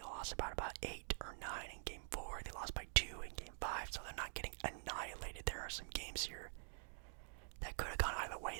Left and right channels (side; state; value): left; silent; digital silence